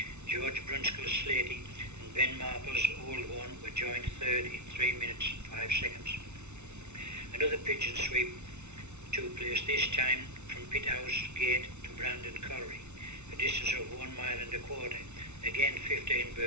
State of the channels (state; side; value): late; left; 0.82 ms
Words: George Brunskill's Slatey and Ben Marple's Old One were joined third in 3 minutes 5 seconds. Another pigeon sweep took place, this time from Pithouse Gate to Brandon Colliery, a distance of 1 mile and a quarter. Again 15